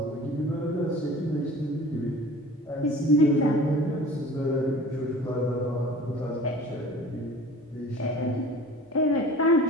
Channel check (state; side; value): normal; both; correlation 0.43